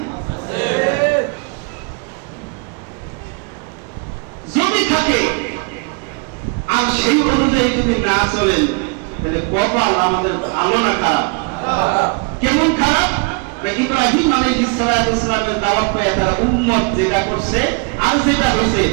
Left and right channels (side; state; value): left; quieter; 32.7 dB